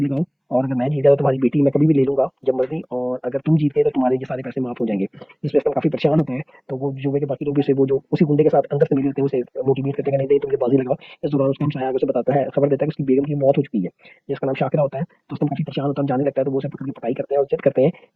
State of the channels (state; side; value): identical; both; correlation 1.00